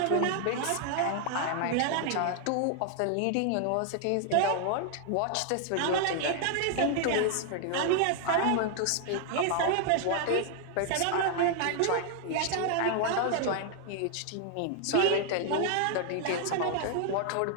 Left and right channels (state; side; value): different; both; correlation 0.00